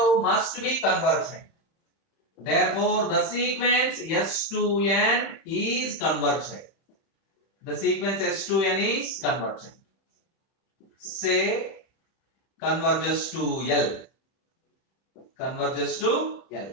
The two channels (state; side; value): late; right; 31 ms